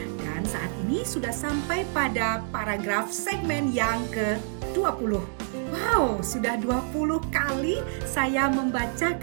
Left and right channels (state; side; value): silent; left; digital silence